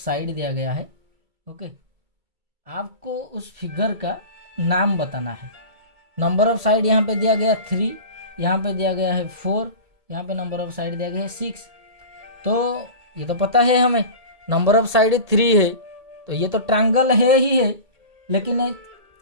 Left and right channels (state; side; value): late; left; 1.8 ms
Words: दिया गया है। ओके, आपको उस फिगर का नाम बताना है। नंबर ऑफ साइड यहाँ पे दिया गया 3, यहाँ पे दिया गया है 4, यहाँ पे नंबर ऑफ साइड दिया गया है 6। तो ये तो पता है हमें, नंबर ऑफ साइड 3 है, तो ये तो ट्रायंगल है ही है, लेकिन